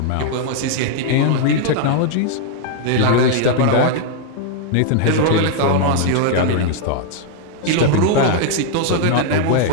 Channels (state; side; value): different; both; correlation 0.00